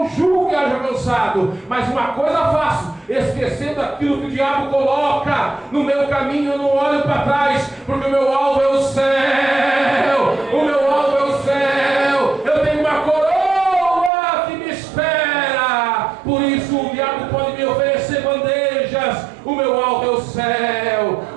julgo que haja cansado, mas uma coisa faço, esquecendo aquilo que o diabo coloca no meu caminho, eu não olho para trás, porque o meu alvo é o céu, o meu alvo é o céu. Eu tenho uma coroa que me espera, por isso o diabo pode me oferecer bandejas. O meu alvo é o céu,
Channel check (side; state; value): left; drops out; at 14.1 s